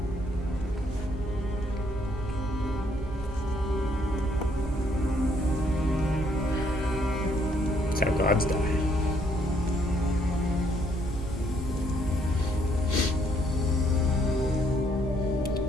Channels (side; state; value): both; normal; correlation 0.69